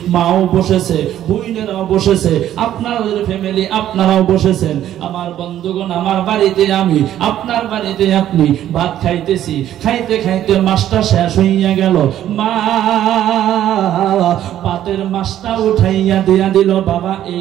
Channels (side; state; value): left; quieter; 11.8 dB